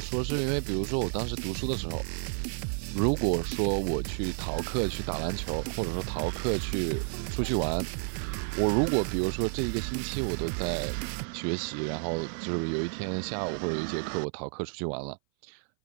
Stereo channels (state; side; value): silent; left; 57 dB below the other